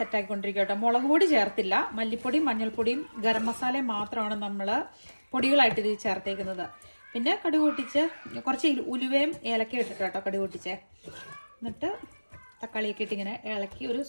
കേട്ടോ. മുളക് പൊടി ചേർത്തില്ല, മല്ലിപ്പൊടിയും മഞ്ഞൾപ്പൊടിയും ഗരം മസാലയും മാത്രമാണ് നമ്മൾ പൊടികളായിട്ട് ഇത് ചേർത്തേക്കുന്നത്. പിന്നെ കടുക് പൊട്ടിച്ച് കുറച്ച് ഉലുവയും ഏലക്കയും ഇട്ടിട്ട് കേട്ടോ കടുക് പൊട്ടിച്ചേ. എന്നിട്ട് തക്കാളിയൊക്കെ ഇട്ട് ഇങ്ങനെ ഇളക്കി ഒരു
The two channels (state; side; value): inverted; both; correlation -1.00